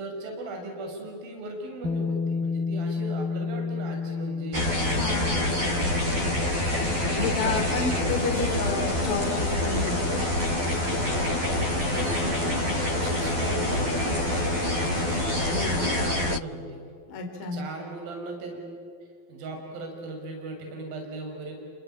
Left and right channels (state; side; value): late; left; 12 ms